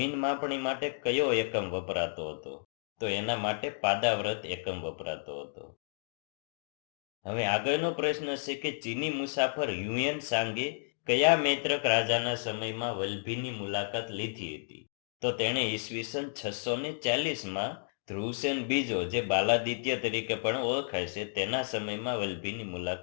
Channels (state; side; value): silent; right; digital silence